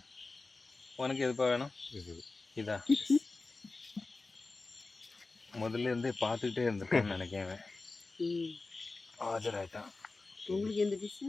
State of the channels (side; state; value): right; quieter; 3.6 dB